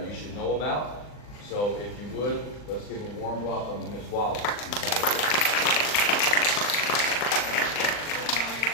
you should know about. So if you would, let's give a warm welcome to Ms. Wallace. Good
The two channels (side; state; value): right; late; 39 ms